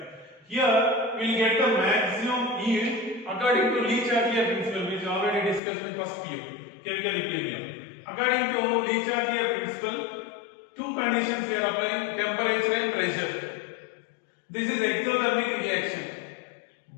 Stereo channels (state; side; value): drops out; right; at 5.6 s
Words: Here we will get the maximum yield according to Le-Chatelier principle, which already discussed in first PU, chemical equilibrium. According to Le-Chatelier principle, two conditions we are applying: temperature and pressure. This is exothermic reaction.